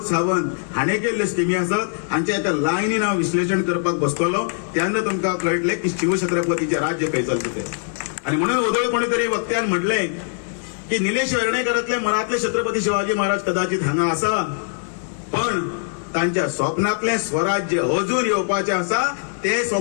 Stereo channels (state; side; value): silent; right; digital silence